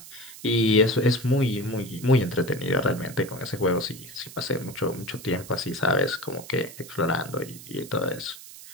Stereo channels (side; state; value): right; noise; hiss, 16 dB below the sound